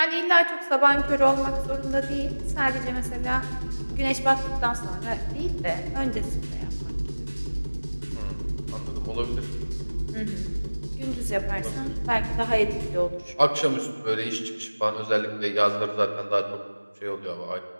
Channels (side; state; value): both; inverted; correlation -1.00